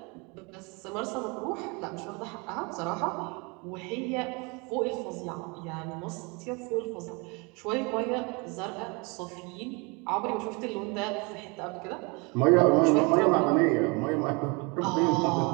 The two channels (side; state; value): left; quieter; 29.5 dB